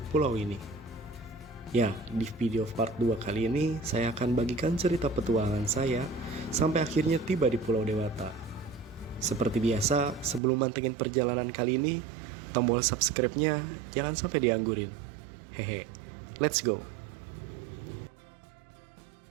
pulau ini. Ya, di video part 2 kali ini, saya akan bagikan cerita petualangan saya sampai akhirnya tiba di Pulau Dewata. Seperti biasa, sebelum mantengin perjalanan kali ini, tombol subscribe-nya jangan sampai dianggurin. Hehe, let's go!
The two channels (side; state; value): left; drops out; at 10.4 s